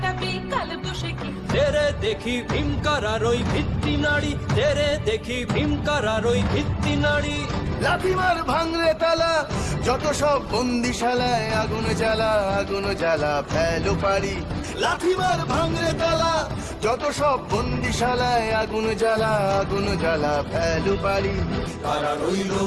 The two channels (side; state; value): both; identical; correlation 1.00